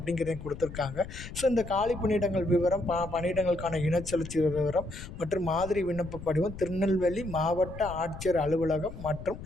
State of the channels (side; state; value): left; noise; rumble, 12 dB below the sound